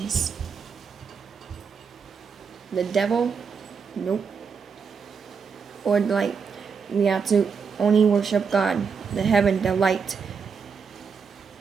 The devil, nope, or light. We have to only worship God, the heaven, the light,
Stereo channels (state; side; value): quieter; left; 5.9 dB